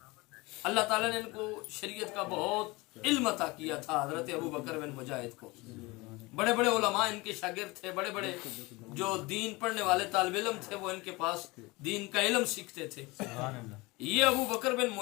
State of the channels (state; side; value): quieter; right; 23.4 dB